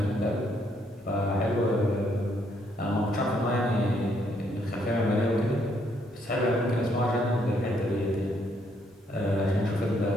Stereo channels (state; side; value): normal; both; correlation 0.71